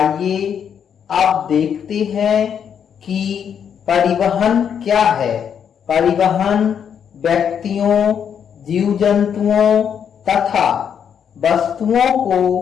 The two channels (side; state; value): right; quieter; 8.0 dB